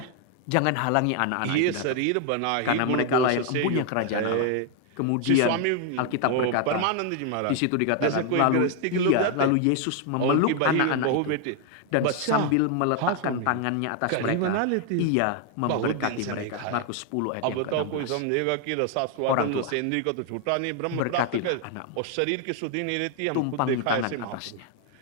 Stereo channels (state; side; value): different; both; correlation 0.00